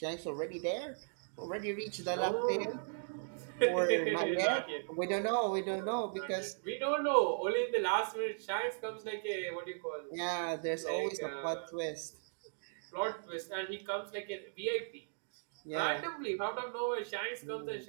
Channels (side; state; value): left; silent; digital silence